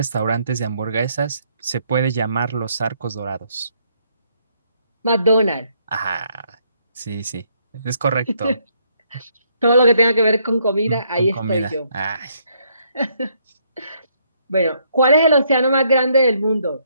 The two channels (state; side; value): inverted; both; correlation -0.71